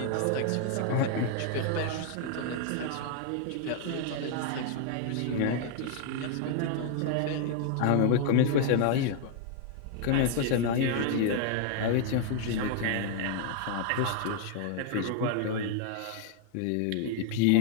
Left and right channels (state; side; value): different; both; correlation 0.00